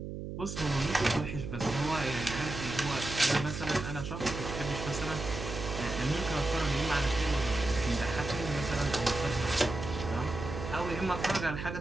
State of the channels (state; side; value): noise; right; hum, 7 dB below the sound